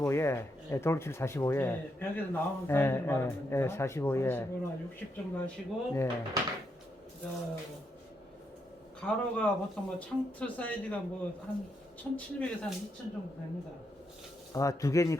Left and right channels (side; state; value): both; normal; correlation 0.80